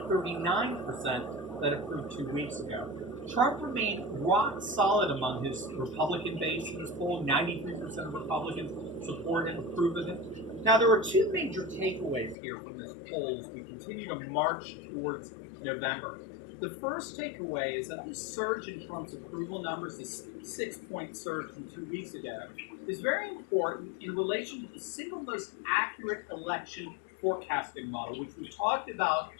39% that approved 2 weeks ago. Trump remained rock solid among his Republican base in this poll. 93% of Republicans support him, approve of him. Now, there are two major takeaways here from this poll as we continue to march towards November. The first takeaway is that this surge in Trump's approval numbers, this 6-point surge from 2 weeks ago, is very important in relation to the single most accurate election forecasting model, which we talked about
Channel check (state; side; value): drops out; right; at 12.4 s